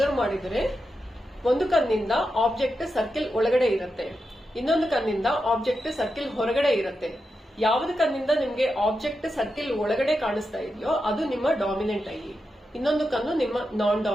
ಮಾಡಿದ್ರೆ ಒಂದು ಕಣ್ಣಿಂದ ಆಬ್ಜೆಕ್ಟ್ ಸರ್ಕಿಲ್ ಒಳಗಡೆ ಇರುತ್ತೆ, ಇನ್ನೊಂದು ಕಣ್ಣಿಂದ ಆಬ್ಜೆಕ್ಟ್ ಸರ್ಕಿಲ್ ಹೊರಗಡೆ ಇರುತ್ತೆ. ಯಾವ್ದು ಕಣ್ಣಿಂದ ನಿಮ್ಗೆ ಆಬ್ಜೆಕ್ಟ್ ಸರ್ಕಿಲ್ ಒಳಗಡೆ ಕಾಣಿಸ್ತಾ ಇದೆಯೋ ಅದು ನಿಮ್ಮ ಡಾಮಿನೆಂಟ್ ಐ, ಇನ್ನೊಂದು ಕಣ್ಣು ನಿಮ್ಮ ನಾನ್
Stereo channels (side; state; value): both; normal; correlation 0.88